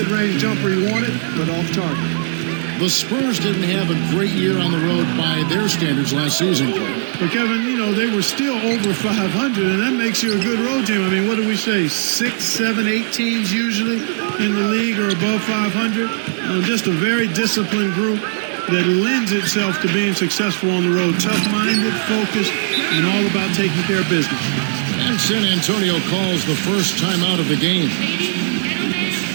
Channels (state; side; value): silent; left; digital silence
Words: jumper he wanted, but off target. The Spurs didn't have a great year on the road by their standards last season. But Kevin, you know, they were still over 500, and that makes you a good road team. I mean, what do we say? 6, 7, 8 teams usually in the league are above 500. Just a very disciplined group that lends itself to being successful on the road. Tough-minded, focused, and all about taking care of business. And San Antonio calls the first time out of the game.